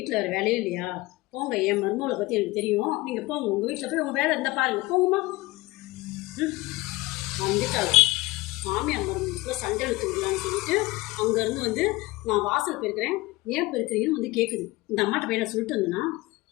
வேறு வேலையே இல்லையா? போங்க, என் மருமகளை பற்றி எனக்கு தெரியும். நீங்கள் போங்க, உங்கள் வீட்டில் போய் உங்கள் வேலை இருந்தால் பாருங்கள், போங்கம்மா. வந்துட்டாங்க மாமியார் மருமகளுக்கு சண்டை எடுத்து விடலான்னு சொல்லிட்டு அங்கேருந்து வந்து நான் வாசல் போயிருக்கிறேன், ஏன் போயிருக்கிறீங்கன்னு வந்து கேட்குது. இந்த அம்மாட்ட போய் நான் சொல்லிட்டு வந்தேன்னா,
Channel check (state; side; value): quieter; right; 21.1 dB